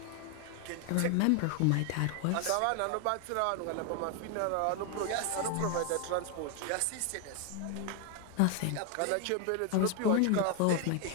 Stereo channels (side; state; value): both; different; correlation 0.01